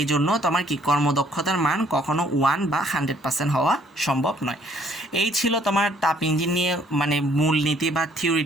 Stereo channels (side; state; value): both; normal; correlation 0.62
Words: জন্য তোমার কি কর্মদক্ষতার মান কখনো 1 বা 100% হওয়া সম্ভব নয়। এই ছিল তোমার তাপ ইঞ্জিন নিয়ে মানে মূলনীতি বা